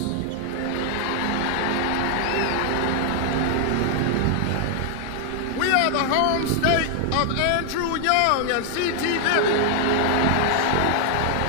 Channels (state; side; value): different; both; correlation 0.00